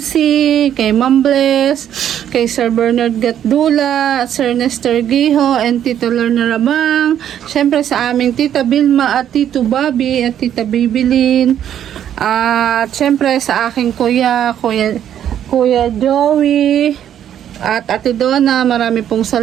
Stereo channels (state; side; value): quieter; left; 10.2 dB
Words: kay Ma'am Bless, kay Sir Bernard Gatdula, Sir Nestor Giho, and Tito Lorna Rabang, syempre sa aming Tita Bilma at Tito Bobby at Tita Bibilin, at syempre sa aking Kuya Joey, at Ate Donna, marami pong